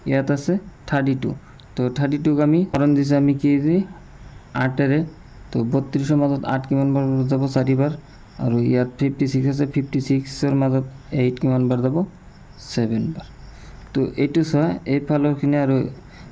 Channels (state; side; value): identical; both; correlation 1.00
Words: ইয়াত আছে 32। তো 32ক আমি হৰণ দিছে আমি কি দি 8ৰে। তো 32ৰ মাজত 8 কিমান বাৰ যাব? 4 বাৰ। আৰু ইয়াত 56 আছে, 56ৰ মাজত 8 কিমান বাৰ যাব? 7 বাৰ। তো এইটো চোৱা, এইফালৰখিনি আৰু